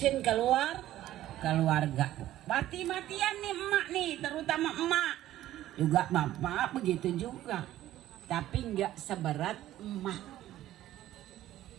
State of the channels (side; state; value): left; quieter; 13.8 dB